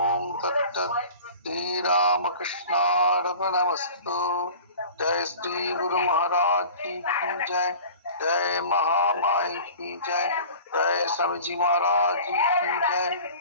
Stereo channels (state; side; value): inverted; both; correlation -0.41